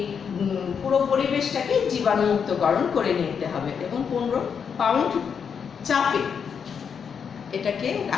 পুরো পরিবেশটাকে জীবাণুমুক্তকরণ করে নিতে হবে এবং 15 পাউন্ড চাপে এটাকে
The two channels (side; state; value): right; quieter; 6.8 dB